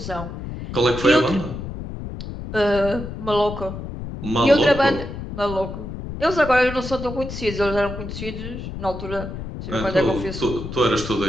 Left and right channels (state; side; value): noise; left; rumble, 8 dB below the sound